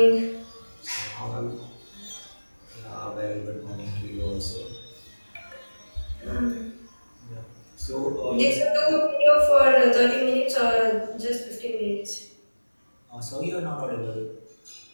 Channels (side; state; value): both; inverted; correlation -1.00